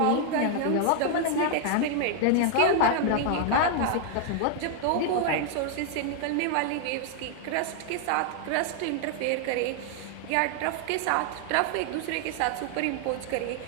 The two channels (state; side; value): different; both; correlation 0.00